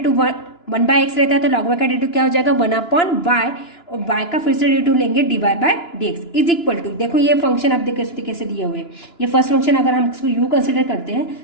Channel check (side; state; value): right; late; 2.9 ms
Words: वन बाय एक्स रहता है तो log y का डेरिवेटिव क्या हो जाएगा वन अपॉन वाई, और y का फिर से डेरिवेटिव लेंगे D Y by D x is equal to, देखो ये फंक्शन अब देखो इस कैसे दिए हुए हैं, ये फर्स्ट फंक्शन अगर हम उसको u कंसिडर करते हैं,